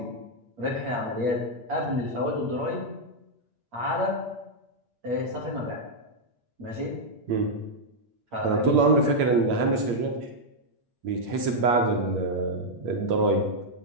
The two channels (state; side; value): late; left; 8.6 ms